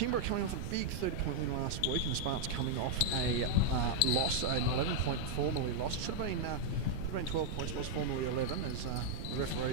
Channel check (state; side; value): noise; right; rumble, 6 dB below the sound